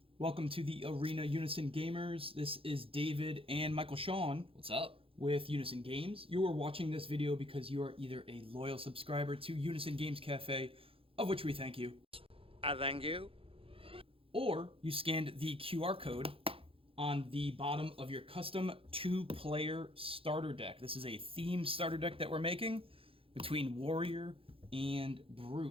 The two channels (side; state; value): left; late; 0.27 ms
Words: Welcome to the Arena Unison Gamers. This is David and Michael Shawn What's up? with Unison Games. You are watching this video because you are either a loyal subscriber to Unison Games Cafe, of which we thank you, I thank you. or you scanned the QR code on the bottom of your custom two-player starter deck. This is a themed starter deck that we're making between Warrior and